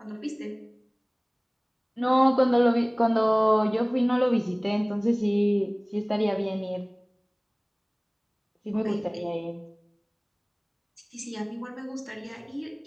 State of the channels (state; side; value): identical; both; correlation 1.00